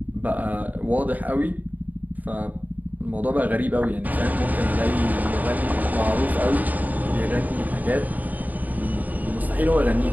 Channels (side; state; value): left; late; 0.080 ms